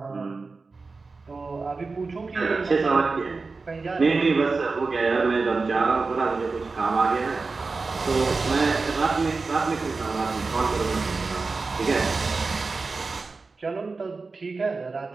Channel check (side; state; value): left; quieter; 4.1 dB